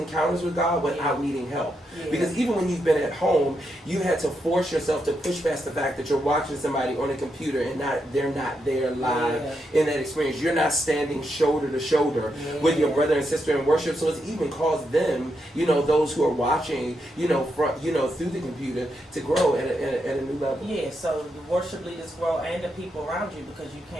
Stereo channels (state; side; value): normal; both; correlation 0.82